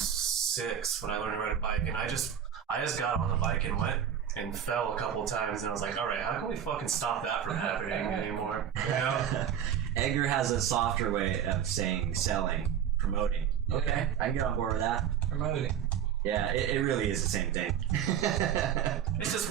when I learned to ride a bike, and I just got on the bike and went and fell a couple of times, and I was like, all right, how can we fucking stop that from happening anymore? You know? Edgar has a softer way of saying selling, promoting. Yeah. Okay, I can get on board with that. Promoting. Yeah, it really is the same thing. It's just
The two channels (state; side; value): quieter; left; 9.1 dB